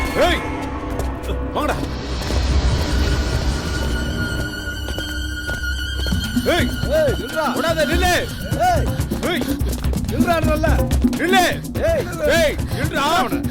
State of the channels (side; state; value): both; identical; correlation 1.00